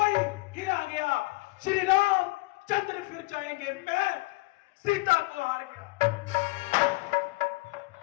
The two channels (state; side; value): quieter; right; 22.8 dB